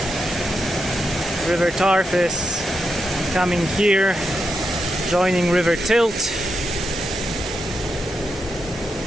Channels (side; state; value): both; normal; correlation 0.85